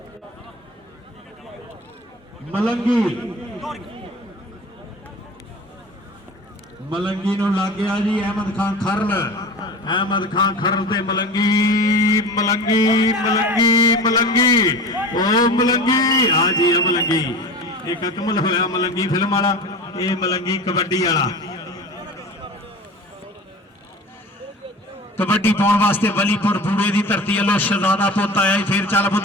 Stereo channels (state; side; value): normal; both; correlation 0.35